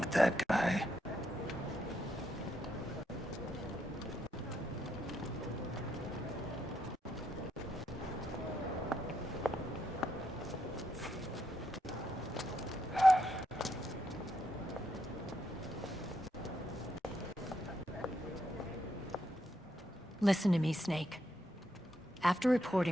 that guy? Listen to me, Snake. After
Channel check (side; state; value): both; normal; correlation 0.79